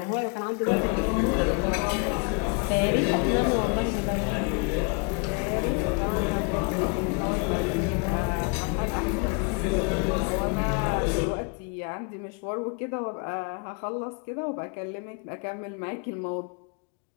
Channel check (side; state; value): right; quieter; 33.7 dB